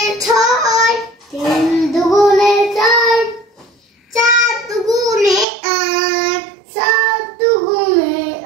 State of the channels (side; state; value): left; drops out; at 5.5 s